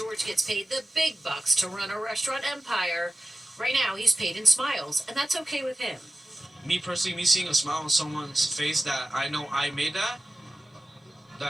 gets paid the big bucks to run a restaurant empire, right now he's paid in smiles, and that's okay with him. Me personally, me seeing a smile on someone's face that I know I made that,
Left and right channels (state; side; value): normal; both; correlation 0.95